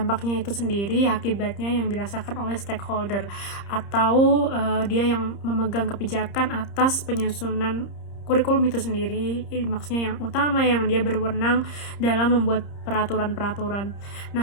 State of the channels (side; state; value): right; late; 30 ms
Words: itu sendiri, akibatnya yang dirasakan oleh stakeholder atau dia yang memegang kebijakan atas penyusunan kurikulum itu sendiri, maksudnya yang utama yang dia berwenang dalam membuat peraturan-peraturan.